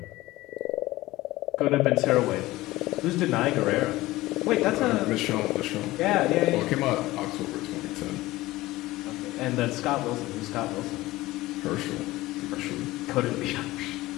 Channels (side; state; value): right; quieter; 18.2 dB